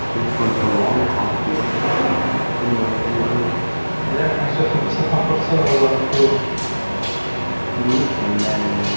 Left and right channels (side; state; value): both; inverted; correlation -1.00